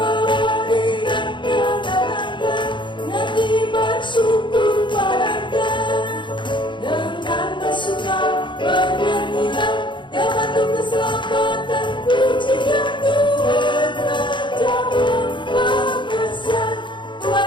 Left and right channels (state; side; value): late; right; 0.23 ms